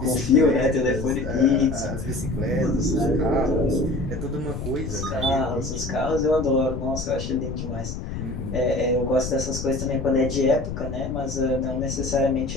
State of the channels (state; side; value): noise; left; rumble, 6 dB below the sound